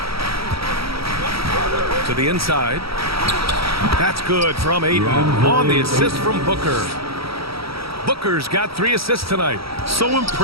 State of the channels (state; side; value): late; left; 0.76 ms